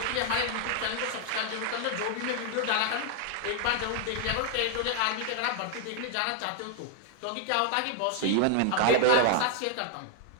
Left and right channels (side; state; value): both; different; correlation 0.00